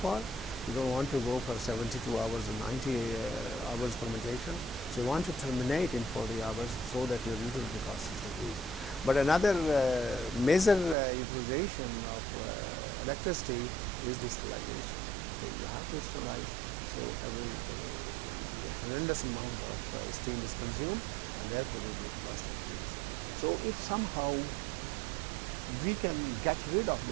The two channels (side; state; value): left; drops out; at 11.0 s